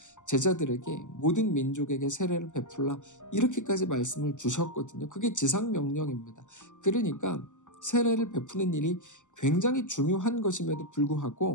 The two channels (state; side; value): late; right; 0.85 ms